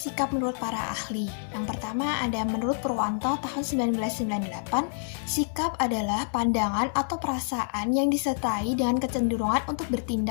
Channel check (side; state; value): right; silent; 60 dB below the other